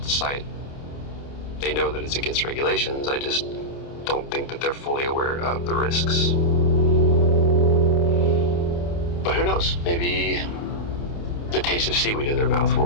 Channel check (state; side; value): late; right; 29 ms